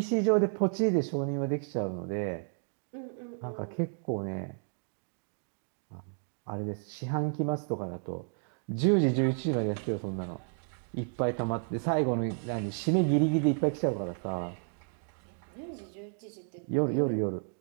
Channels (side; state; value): left; silent; 56 dB below the other